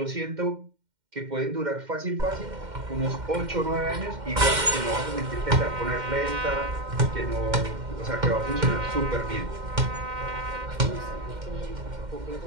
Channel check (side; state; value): left; late; 2.1 ms